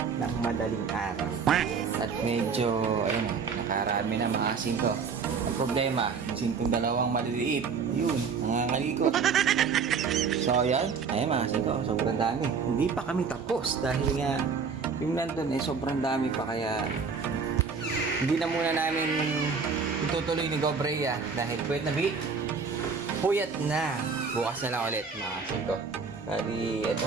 ng madaling araw. At medyo, ayun, nakarami na mga singko. Ang problema, sintong dalawang maliliit. Yun, nangangalikot. So, ayan. Ayun mga singko, sobrang dami. Hindi pa kami tapos dahil nga yung nandun sobrang dami pa kaya hindi na muna namin itutuloy ni Gobrea dahil puyat na. Bukas na lang ulit mga singko. Bali, eto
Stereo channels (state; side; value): quieter; left; 5.5 dB